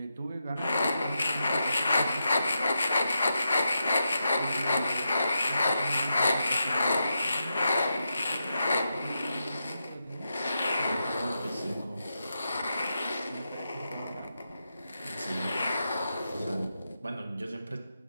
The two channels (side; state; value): both; inverted; correlation -0.87